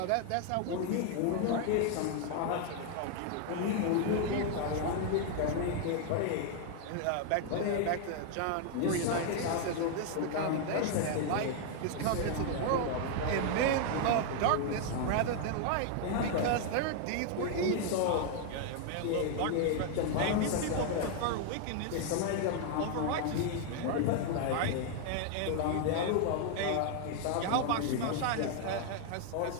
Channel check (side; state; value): both; different; correlation 0.00